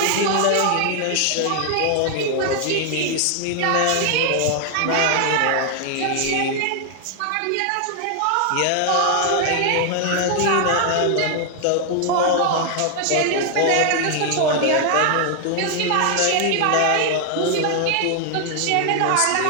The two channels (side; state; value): both; different; correlation 0.00